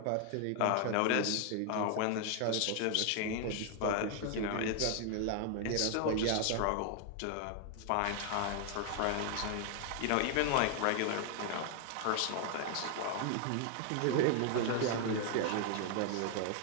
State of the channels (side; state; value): both; different; correlation 0.00